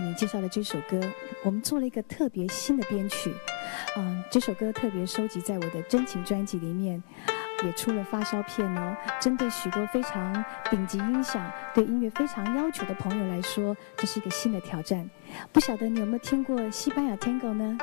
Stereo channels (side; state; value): right; silent; 58 dB below the other